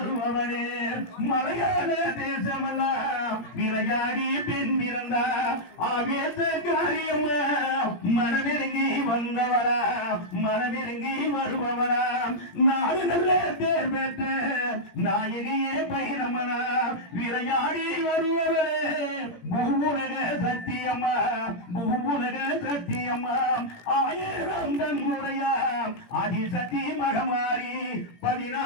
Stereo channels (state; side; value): late; right; 17 ms